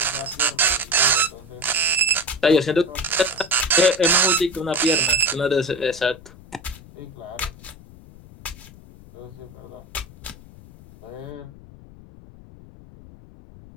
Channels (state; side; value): noise; left; rumble, 20 dB below the sound